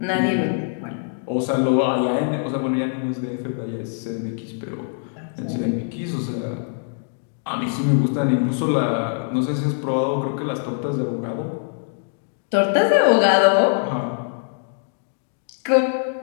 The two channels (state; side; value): silent; right; digital silence